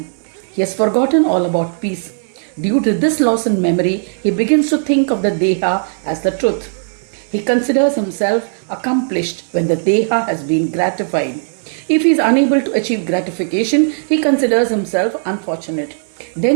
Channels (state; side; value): silent; left; digital silence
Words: He has forgotten all about peace. Due to this loss in memory, he begins to think of the Deha as the truth. He considers himself accomplished when the Deha has been gratified. If he is unable to achieve gratification, he considers himself unfortunate.